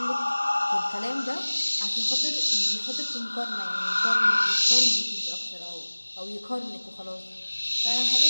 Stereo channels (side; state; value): both; inverted; correlation -1.00